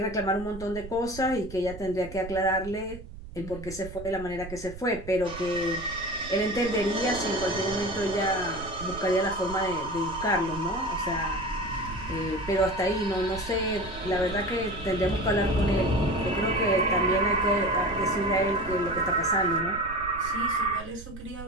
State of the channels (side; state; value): right; noise; rumble, 13 dB below the sound